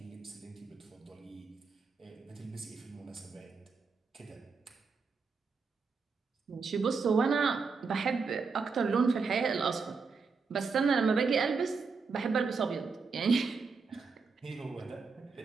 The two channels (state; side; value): quieter; left; 4.9 dB